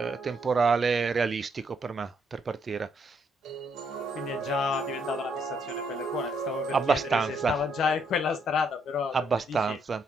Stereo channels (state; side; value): normal; both; correlation 0.73